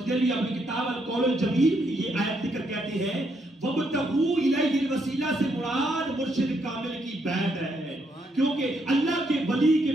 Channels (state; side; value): normal; both; correlation 0.76